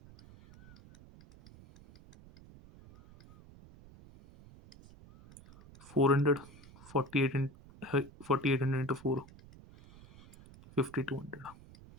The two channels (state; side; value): noise; right; rumble, 21 dB below the sound